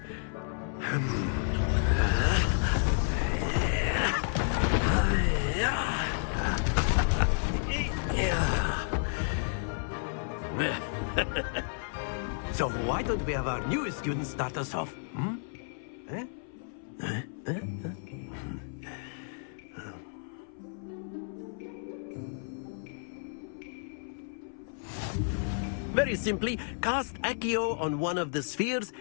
So why don't we have our newest student start us off? Very simply, cast Accio on one of the spheres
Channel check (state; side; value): silent; right; 57 dB below the other